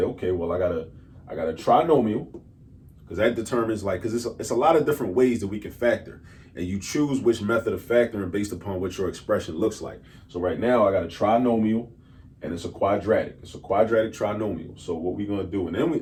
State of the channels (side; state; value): both; identical; correlation 1.00